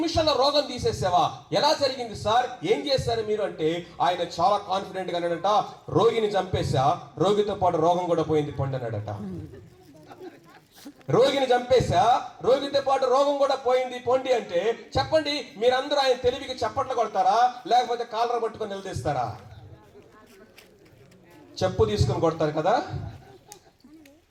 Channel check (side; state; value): both; identical; correlation 1.00